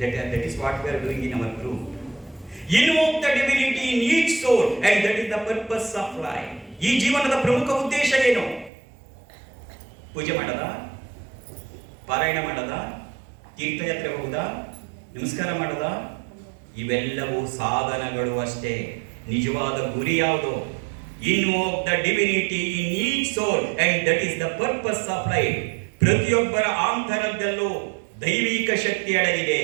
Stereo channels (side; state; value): left; drops out; at 8.7 s